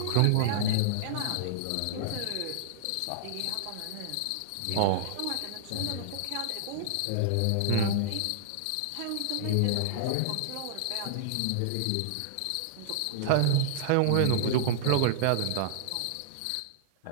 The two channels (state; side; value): different; both; correlation -0.01